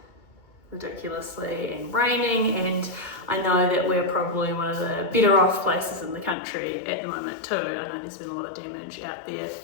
ridiculously and raining, and I know that we're probably one of the better off places in the country at the moment too. I know there's been a lot of damage out there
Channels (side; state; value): right; drops out; at 6.4 s